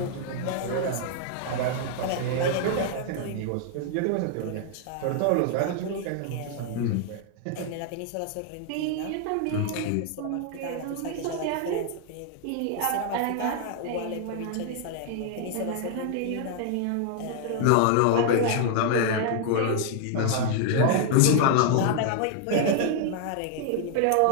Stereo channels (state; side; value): different; both; correlation 0.00